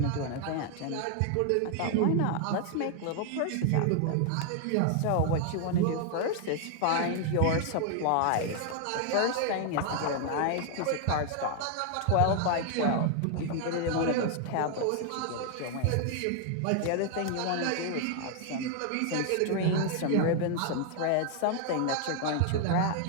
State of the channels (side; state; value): both; different; correlation 0.00